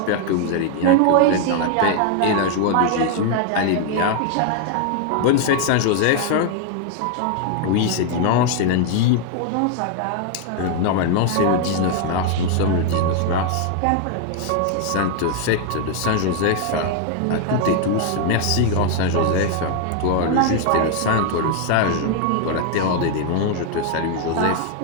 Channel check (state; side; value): different; both; correlation 0.00